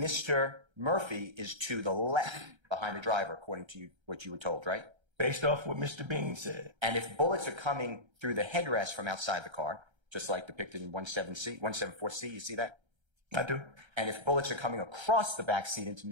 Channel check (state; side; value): late; left; 1.3 ms